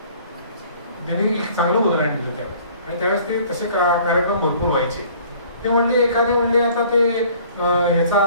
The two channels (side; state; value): both; inverted; correlation -0.53